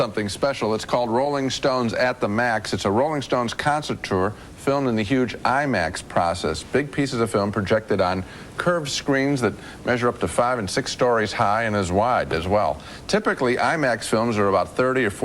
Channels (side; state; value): both; identical; correlation 1.00